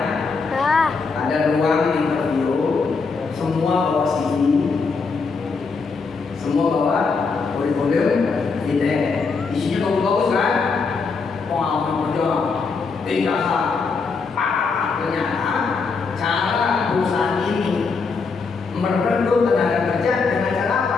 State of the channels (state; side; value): quieter; right; 4.7 dB